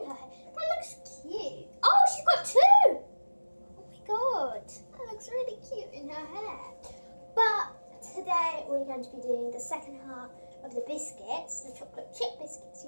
her hair. That looks cute. Oh, she's got two. Oh my god, that looks really cute in her hair. But today we're going to be doing the second half of the biscuits, the chocolate chip biscuits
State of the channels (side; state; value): both; inverted; correlation -1.00